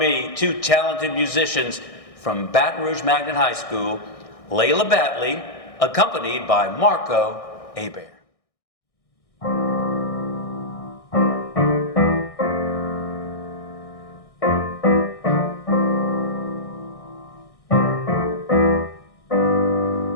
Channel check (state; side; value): late; right; 1.6 ms